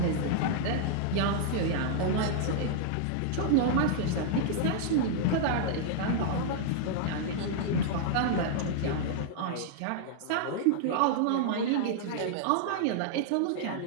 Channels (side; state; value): both; different; correlation -0.01